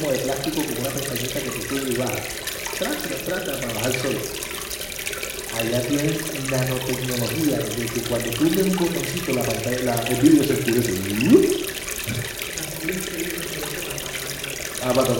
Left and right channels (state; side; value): identical; both; correlation 1.00